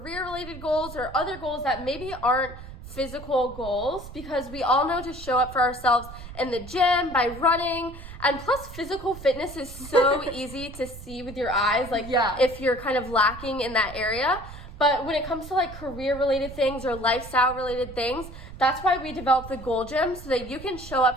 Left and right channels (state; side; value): noise; right; rumble, 14 dB below the sound